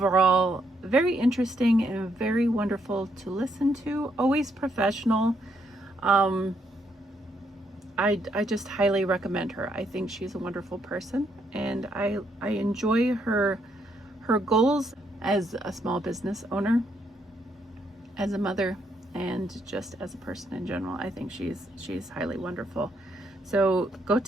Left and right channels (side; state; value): both; normal; correlation 0.75